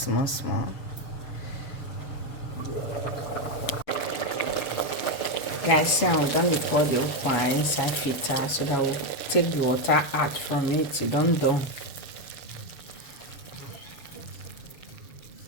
Guys, see I'm done pour the ukwa inside filter so that we'll take the water out from it. It done.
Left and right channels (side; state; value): right; late; 7.2 ms